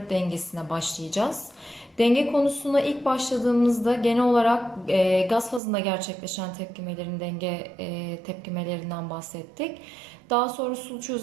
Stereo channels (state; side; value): drops out; left; at 5.6 s